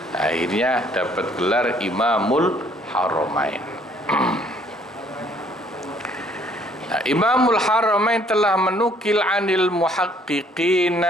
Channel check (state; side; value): normal; both; correlation 0.62